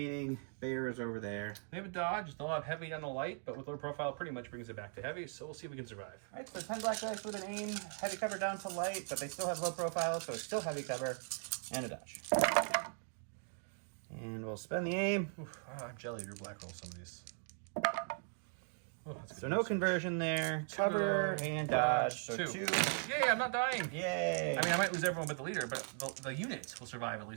bears over there. They have a dodge. They'll have heavy on the light, but with low profile, pretty much brings it back to heavy. So we'll see if we can survive. All right, so 10 black dice with an aim, heavy cover down to light, but they still have low profile, so it's still heavy cover, and a dodge. And we'll spend the aim. Oof, I'm jelly. Your black roll some of these. Oh, that's So no conversion there. Cover and dodge. So 2. Yay, I'm not dying. Yay. I mean, I might lose everyone but the leader, but the unit will survive, at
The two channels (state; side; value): silent; left; 52 dB below the other